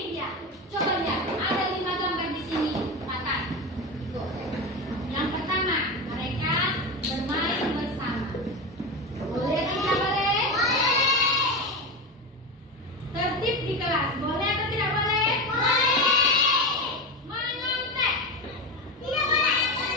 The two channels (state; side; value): normal; both; correlation 0.20